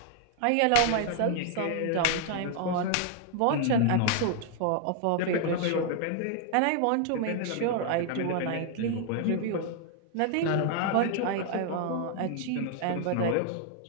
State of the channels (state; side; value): different; both; correlation 0.00